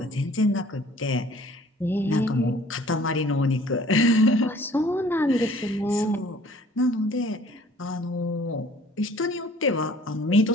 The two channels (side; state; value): both; normal; correlation 0.53